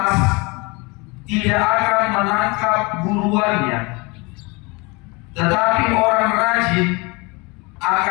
tidak akan menangkap buruannya, tetapi orang rajin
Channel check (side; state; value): right; quieter; 27.1 dB